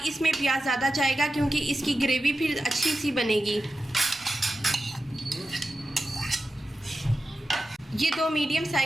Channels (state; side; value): normal; both; correlation 0.92